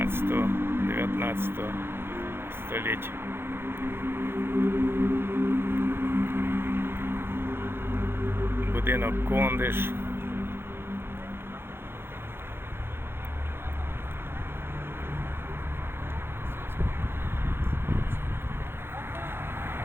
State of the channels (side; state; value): left; late; 0.11 ms